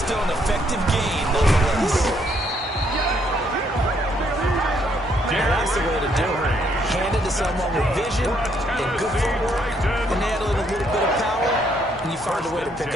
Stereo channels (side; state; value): both; normal; correlation 0.71